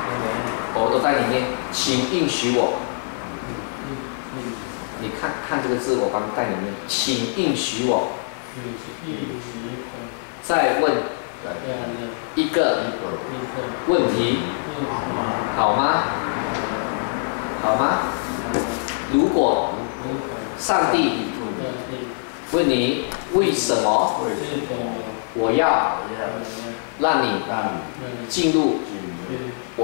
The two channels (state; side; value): silent; right; 57 dB below the other